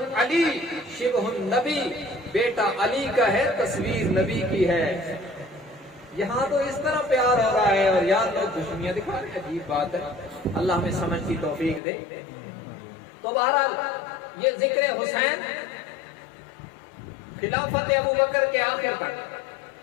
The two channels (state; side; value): drops out; right; at 11.8 s